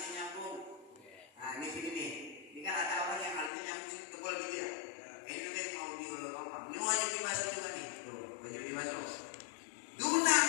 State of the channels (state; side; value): drops out; right; at 3.5 s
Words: nyambung. Nah, ini sini nih. Ini kan ada orang yang alisnya nyambung tebal gitu ya. Ini nanti mau diulur-ulur. Ini wajib dibasuh juga nih. Tuh, wajib dibasuh. Duna